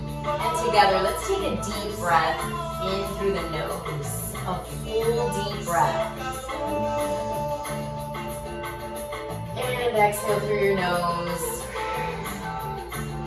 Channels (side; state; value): both; identical; correlation 1.00